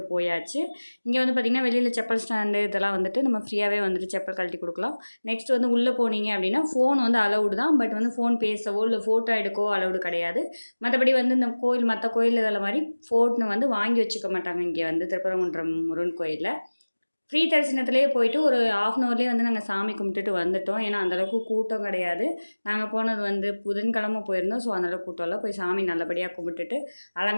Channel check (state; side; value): inverted; both; correlation -1.00